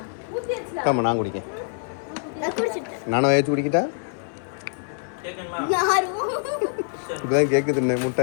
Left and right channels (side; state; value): right; silent; 62 dB below the other